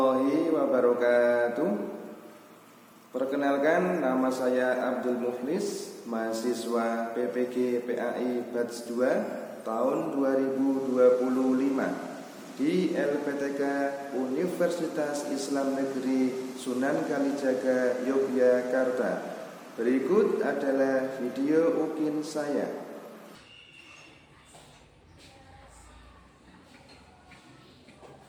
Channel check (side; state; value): both; identical; correlation 1.00